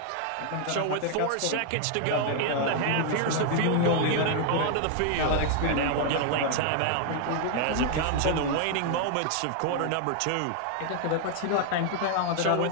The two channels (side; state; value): both; different; correlation 0.00